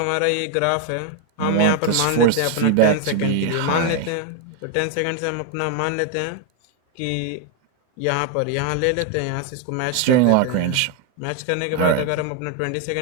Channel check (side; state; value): both; different; correlation 0.01